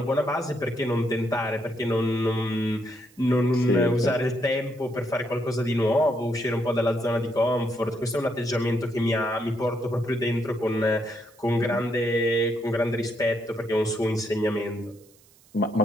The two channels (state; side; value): noise; right; hiss, 29 dB below the sound